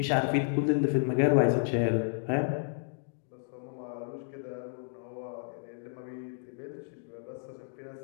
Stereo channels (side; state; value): right; silent; digital silence